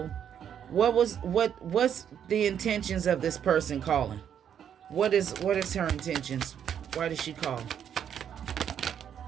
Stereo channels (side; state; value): left; quieter; 8.9 dB